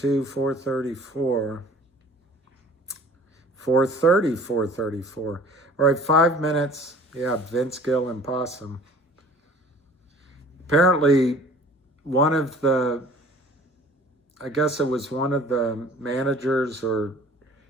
434, 430, 434. All right, 5 minutes. Yeah, Vince Gill and Possum. Apparently, I guess it was one of the managers or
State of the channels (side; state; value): both; normal; correlation 0.48